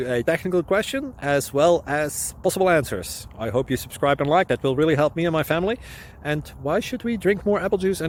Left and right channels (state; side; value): identical; both; correlation 1.00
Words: a technical question as well as possible answers. I hope you subscribe and like, that will really help me and my family. And why should we drink more apple juice